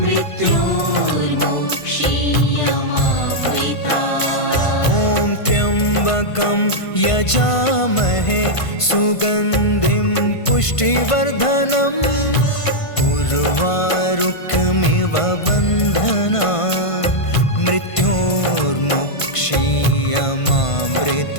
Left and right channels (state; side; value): late; right; 1.5 ms